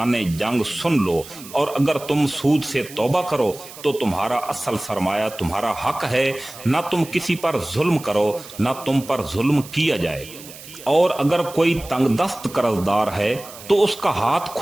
جنگ سن لو، اور اگر تم سود سے توبہ کرو تو تمہارا اصل سرمایہ تمہارا حق ہے، نہ تم کسی پر ظلم کرو نہ تم پر ظلم کیا جائے۔ اور اگر کوئی تنگ دست قرض دار ہے تو اس کا ہاتھ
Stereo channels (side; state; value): right; noise; hiss, 16 dB below the sound